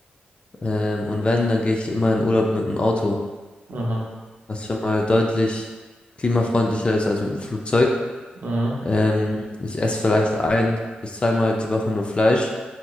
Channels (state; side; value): normal; both; correlation 0.89